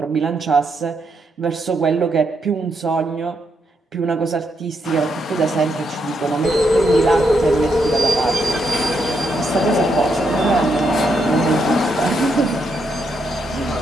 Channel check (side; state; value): both; normal; correlation 0.79